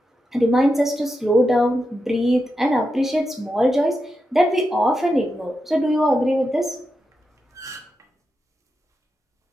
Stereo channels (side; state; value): both; normal; correlation 0.87